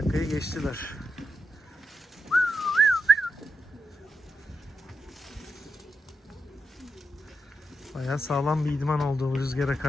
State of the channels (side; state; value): both; normal; correlation 0.86